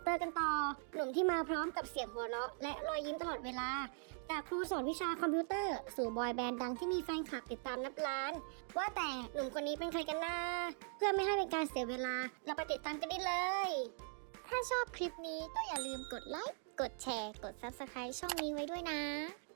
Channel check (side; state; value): left; silent; 50 dB below the other